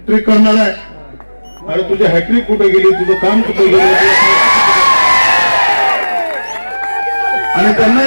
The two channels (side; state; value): both; inverted; correlation -1.00